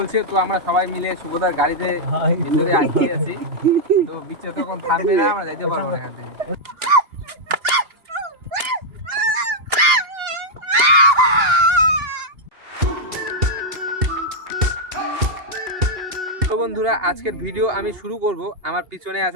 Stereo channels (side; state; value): left; late; 2.7 ms